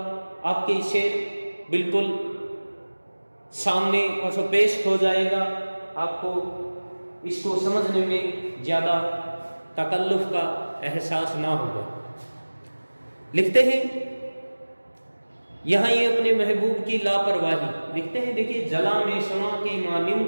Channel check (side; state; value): both; inverted; correlation -1.00